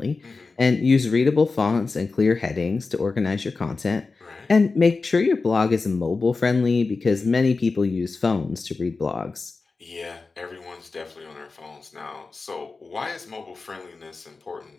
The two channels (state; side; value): quieter; right; 4.1 dB